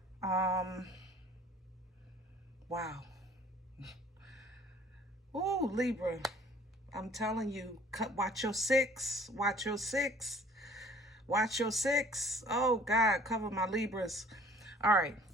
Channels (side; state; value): both; normal; correlation 0.52